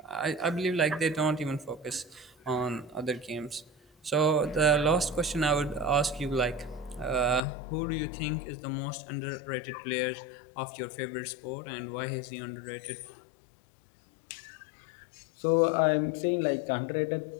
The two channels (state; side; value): drops out; right; at 7.4 s